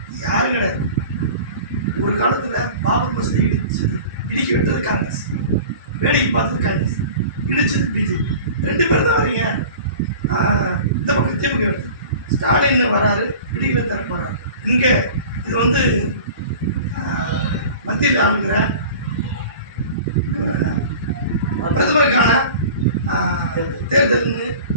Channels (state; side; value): inverted; both; correlation -0.40